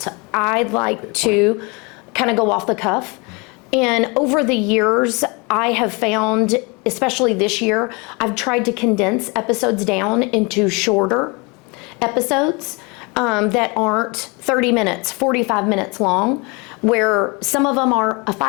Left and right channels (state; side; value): quieter; right; 29.1 dB